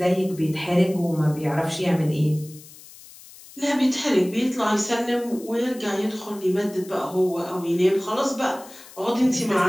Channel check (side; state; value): left; noise; hiss, 20 dB below the sound